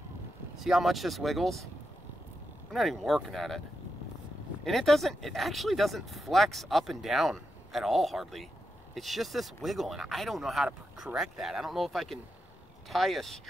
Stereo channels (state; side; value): normal; both; correlation 0.86